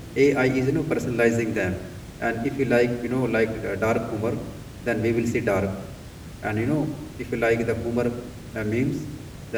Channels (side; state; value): both; identical; correlation 1.00